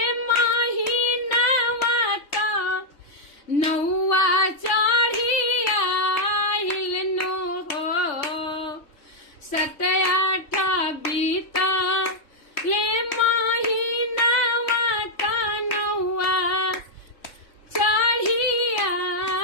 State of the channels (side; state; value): right; late; 3.5 ms